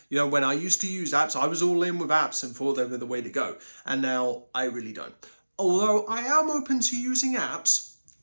When I used to use apps, I was all in with apps and thought they were the way to go. And now I really don't. Although I am open to using apps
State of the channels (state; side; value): inverted; both; correlation -1.00